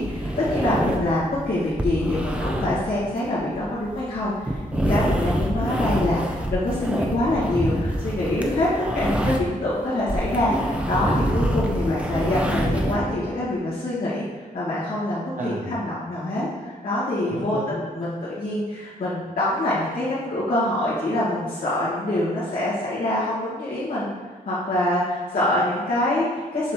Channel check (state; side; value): normal; both; correlation 0.67